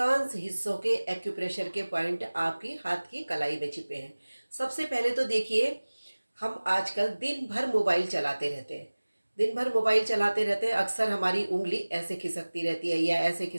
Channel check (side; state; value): both; inverted; correlation -1.00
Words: हिस्सों के एक्यूप्रेशर के पॉइंट आपकी हाथ की कलाई में छिपे हैं। सबसे पहले तो देखिए, हम आजकल दिन भर मोबाइल चलाते रहते हैं। दिन भर मोबाइल चलाते रहते हैं, अक्सर हमारी उंगली ऐसे खिसकती रहती है या ऐसे